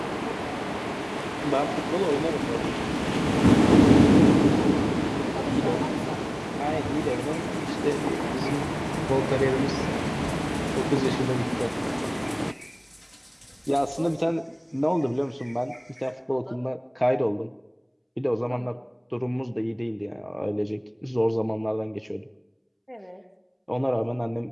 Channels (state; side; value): identical; both; correlation 1.00